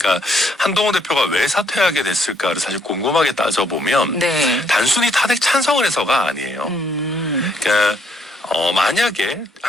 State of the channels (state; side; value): normal; both; correlation 0.70